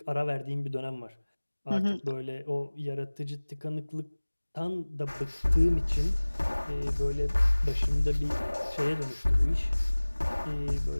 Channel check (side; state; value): both; inverted; correlation -1.00